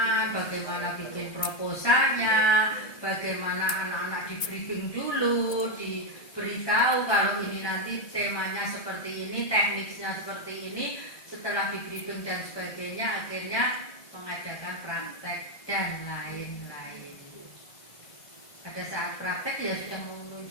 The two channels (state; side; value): late; right; 1.9 ms